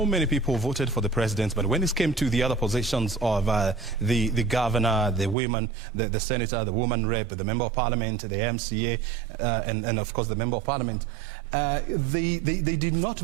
many people voted for the president, but when it came to the other positions of the governor, the women, the senator, the woman rep, the member of parliament, the MCA, and of course the member of parliament, they did not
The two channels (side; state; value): left; drops out; at 5.4 s